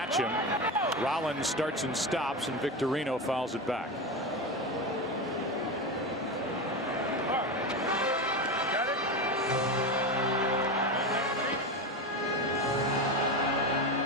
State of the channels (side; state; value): both; normal; correlation 0.19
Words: him. Rollins starts and stops, and Victorino fouls it back.